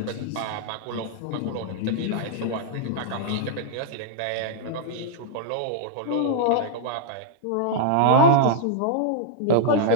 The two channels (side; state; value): both; different; correlation -0.01